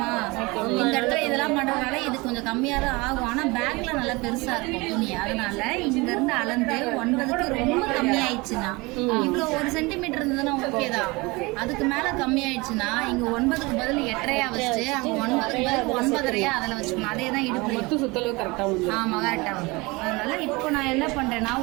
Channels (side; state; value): left; quieter; 24.5 dB